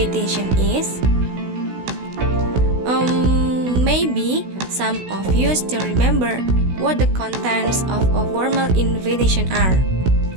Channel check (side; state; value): left; late; 16 ms